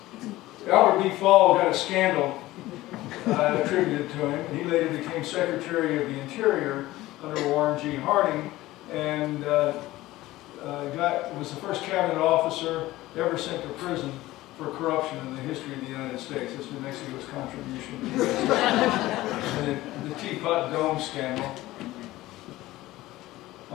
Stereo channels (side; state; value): right; quieter; 17.2 dB